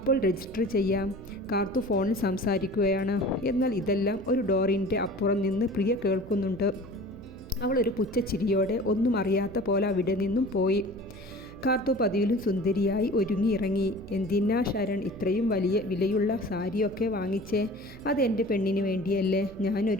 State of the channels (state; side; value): noise; right; hum, 19 dB below the sound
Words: രജിസ്റ്റർ ചെയ്യാം. കാർത്തു ഫോണിൽ സംസാരിക്കുകയാണ്. എന്നാൽ ഇതെല്ലാം ഒരു ഡോറിൻ്റെ അപ്പുറം നിന്ന് പ്രിയ കേൾക്കുന്നുണ്ട്. അവളൊരു പുച്ഛച്ചിരിയോടെ ഒന്നും അറിയാത്ത പോലെ അവിടെ നിന്നും പോയി. കാർത്തു പതിവിലും സുന്ദരിയായി ഒരുങ്ങിയിറങ്ങി. എന്തിനാ ശരൺ ഇത്രയും വലിയ വിലയുള്ള സാരിയൊക്കെ വാങ്ങിച്ചേ? അത് എൻ്റെ പെണ്ണിന് വേണ്ടിയല്ലേ.